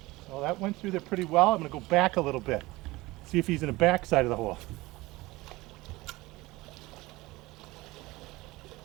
Well, that went through there pretty well. I'm gonna go back a little bit, see if he's in the back side of the hole.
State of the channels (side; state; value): left; quieter; 20.4 dB